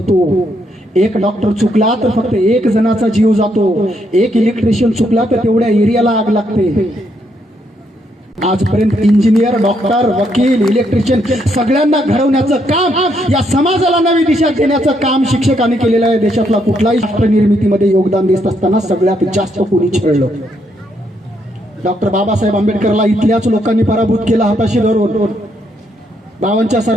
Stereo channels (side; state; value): both; normal; correlation 0.75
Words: एक डॉक्टर चुकला तर फक्त एक जणाचा जीव जातो, एक इलेक्ट्रिशियन चुकला तर तेवढ्या एरियाला आग लागते। आजपर्यंत इंजिनियर, डॉक्टर, वकील, इलेक्ट्रिशियन सगळ्यांना घडवण्याचं काम, या समाजाला नवी दिशा देण्याचं काम शिक्षकांनी केलेलं आहे। देशातला कुठलाही राष्ट्र निर्मितीमध्ये योगदान देत असताना सगळ्यात जास्त कोणी छळलं? डॉक्टर बाबासाहेब आंबेडकरला इथल्याच लोकांनी पराभूत केला हाताशी धरून 52च्या